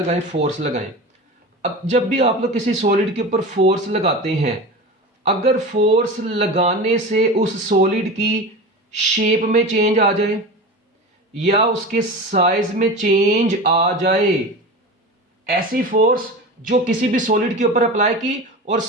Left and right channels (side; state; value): both; normal; correlation 0.29